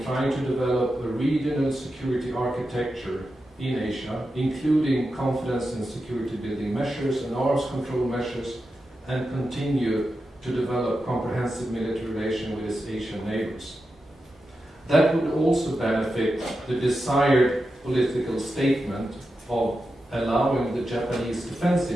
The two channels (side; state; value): both; normal; correlation 0.90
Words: trying to develop a regional security architecture in Asia, including confidence and security building measures and arms control measures, and continue to develop comprehensive military relations with its Asian neighbors. That would also benefit the desired political statement of allowing the Japanese defense